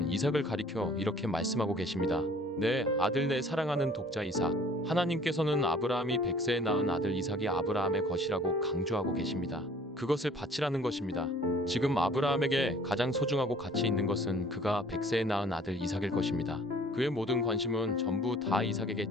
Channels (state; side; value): normal; both; correlation 0.53